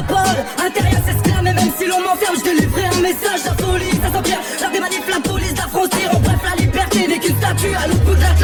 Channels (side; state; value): both; identical; correlation 1.00